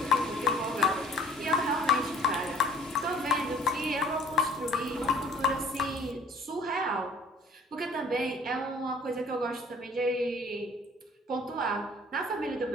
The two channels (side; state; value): both; normal; correlation 0.52